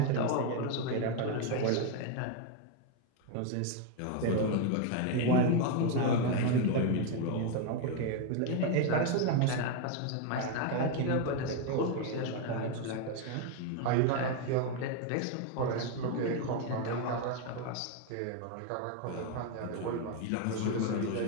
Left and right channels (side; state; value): both; different; correlation 0.01